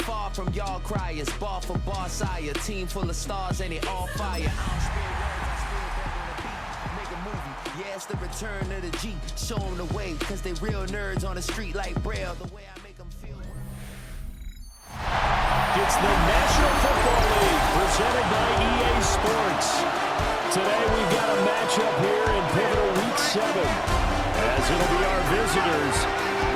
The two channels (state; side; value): identical; both; correlation 1.00